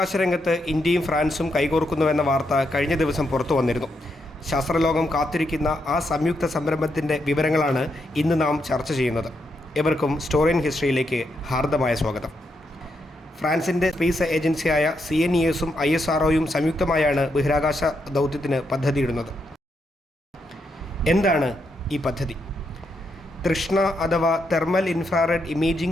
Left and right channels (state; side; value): normal; both; correlation 0.81